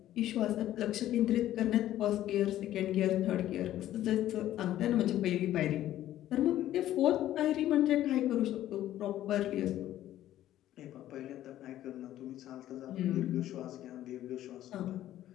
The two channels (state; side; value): quieter; right; 13.1 dB